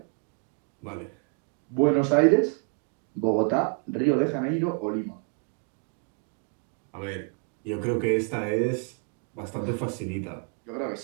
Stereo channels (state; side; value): quieter; left; 36.0 dB